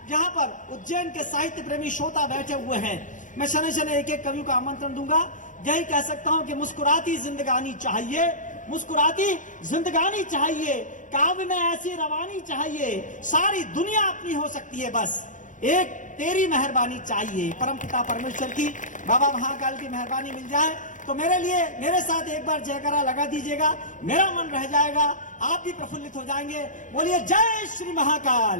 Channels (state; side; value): late; right; 0.37 ms